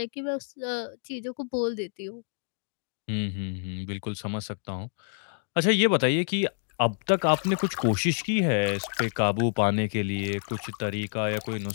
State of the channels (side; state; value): right; silent; digital silence